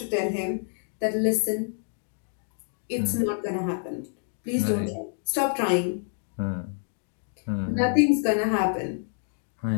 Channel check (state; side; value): silent; right; 60 dB below the other